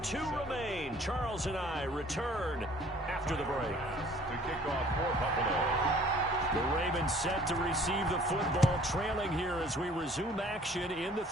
2 remain. Charles and I return after the break. To kick off for Buffalo. The Ravens set to receive the football, trailing here as we resume action in the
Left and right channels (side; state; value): both; normal; correlation 0.54